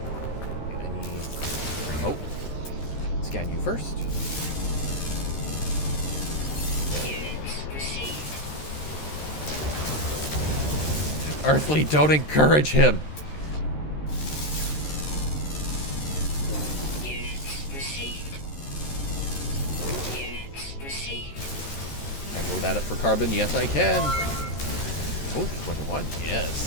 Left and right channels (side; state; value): right; late; 13 ms